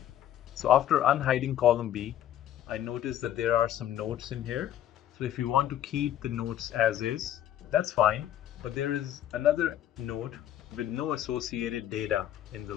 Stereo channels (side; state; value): right; quieter; 11.5 dB